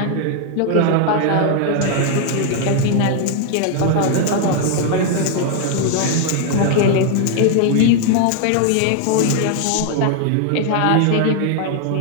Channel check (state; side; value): different; both; correlation 0.00